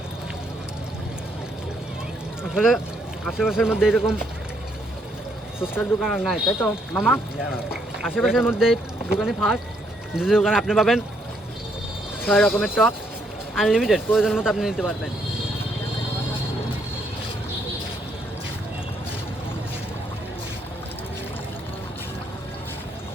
আসলে আশেপাশের মধ্যে এরকম ফুচকার দোকান আর নাই, তাই তো মামা? আশেপাশের মধ্যে দোকানে ফার্স্ট। যে দোকানে আপনি পাবেন 6 রকমের টক, আনলিমিটেড, প্রয়োজন মতো আপনি নিতে পারবেন।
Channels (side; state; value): both; normal; correlation 0.72